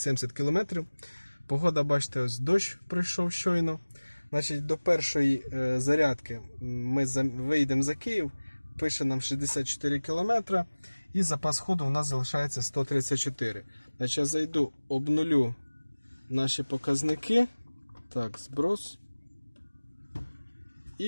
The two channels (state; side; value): inverted; both; correlation -1.00